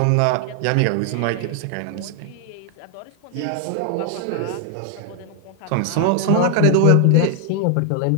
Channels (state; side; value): different; both; correlation 0.00